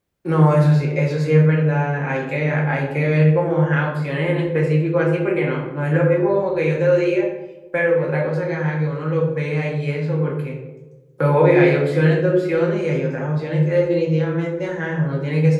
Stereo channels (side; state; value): both; identical; correlation 1.00